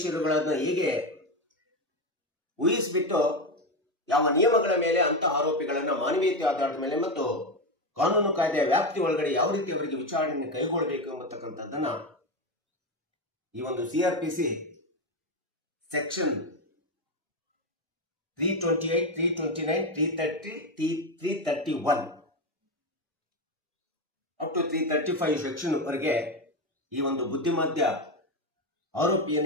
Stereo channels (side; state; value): both; normal; correlation 0.13